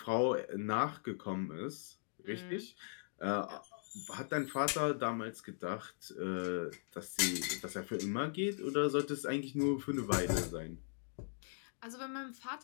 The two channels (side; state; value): right; silent; digital silence